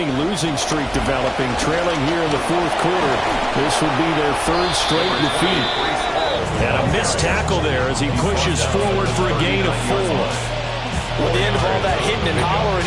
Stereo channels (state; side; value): identical; both; correlation 1.00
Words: losing streak developing, trailing here in the fourth quarter. This would be their 3rd straight defeat. And a missed tackle there as he pushes forward for a gain of 4. With the end of all that hitting and hollering,